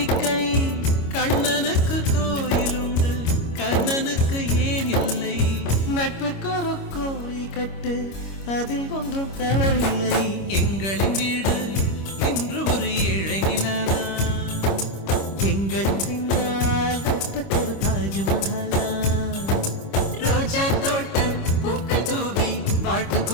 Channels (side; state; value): right; late; 25 ms